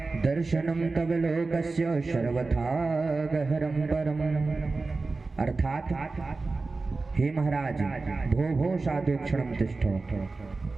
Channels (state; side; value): quieter; left; 3.7 dB